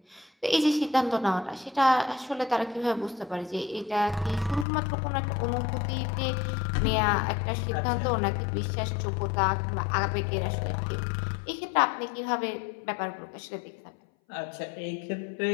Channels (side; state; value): right; drops out; at 4.7 s